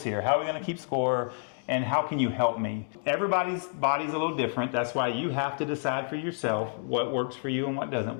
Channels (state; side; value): silent; right; digital silence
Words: here? How are we going to keep score? And how can you help me? Everybody's body's a little different. That's why you have to decide for yourself what works for you and what doesn't